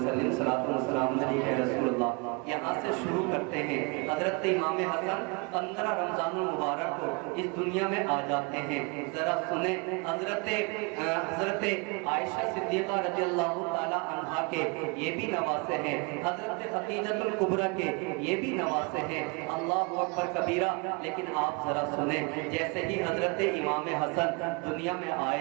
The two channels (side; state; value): left; quieter; 31.1 dB